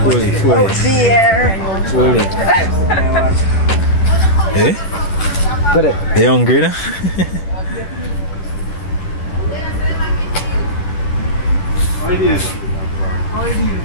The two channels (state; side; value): late; right; 10 ms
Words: Fully. Out there. Fully. Hey? They hungry now? How it is?